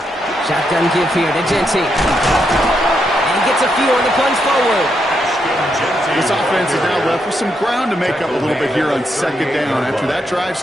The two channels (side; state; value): both; normal; correlation 0.80